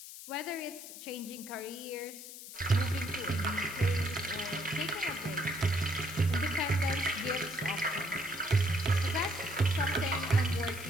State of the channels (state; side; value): noise; left; hiss, 13 dB below the sound